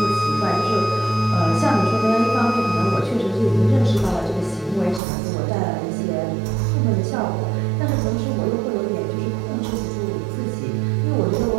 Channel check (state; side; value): drops out; left; at 5.0 s